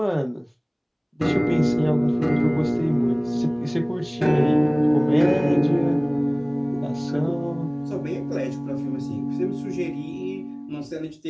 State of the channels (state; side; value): identical; both; correlation 1.00